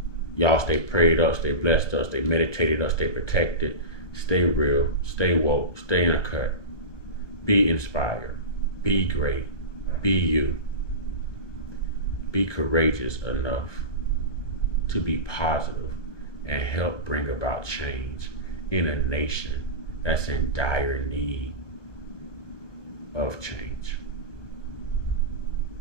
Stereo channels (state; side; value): late; right; 1.2 ms